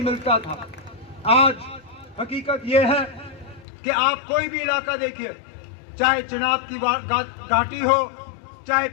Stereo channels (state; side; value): drops out; right; at 3.7 s